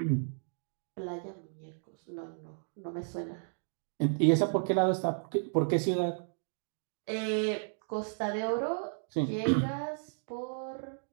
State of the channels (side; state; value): left; silent; digital silence